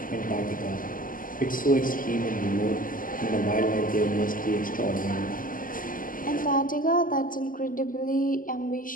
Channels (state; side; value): late; right; 0.40 ms